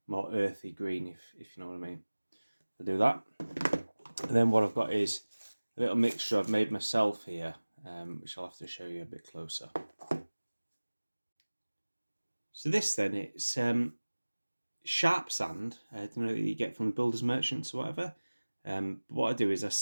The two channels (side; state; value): both; inverted; correlation -1.00